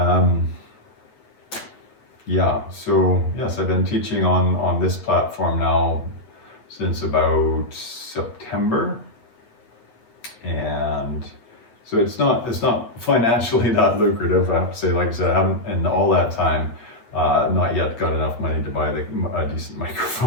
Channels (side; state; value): right; late; 8.7 ms